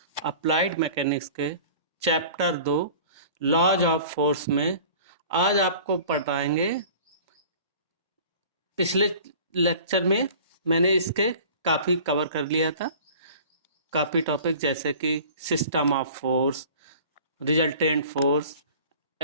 अप्लाइड मैकेनिक्स के चैप्टर 2 लॉज ऑफ फोर्स में आज आपको पढ़ाएंगे। पिछले लेक्चर में मैंने इसके काफ़ी कवर कर लिया था, काफ़ी टॉपिक जैसे कि system of force, resultant force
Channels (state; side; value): inverted; both; correlation -0.44